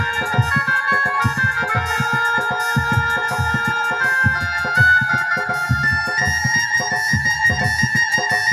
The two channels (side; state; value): both; identical; correlation 1.00